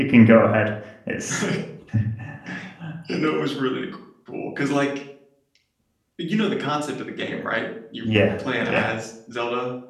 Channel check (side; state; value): both; identical; correlation 1.00